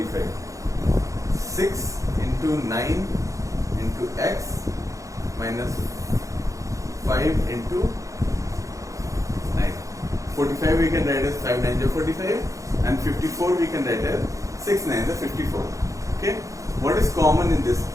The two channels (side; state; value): left; late; 0.16 ms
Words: 6 into 9 into x minus 5 into 9. 45 we can write as 5 9 are 45 and 54 we can write as 6 9 are 54. Okay. What is common in this